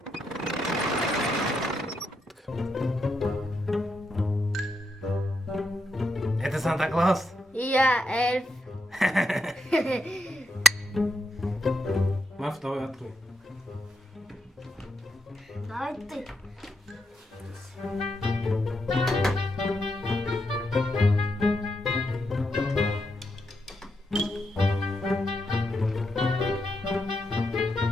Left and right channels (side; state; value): both; normal; correlation 0.82